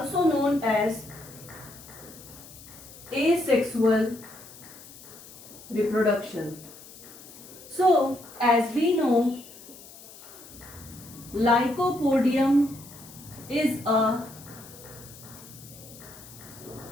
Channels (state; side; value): noise; left; hiss, 18 dB below the sound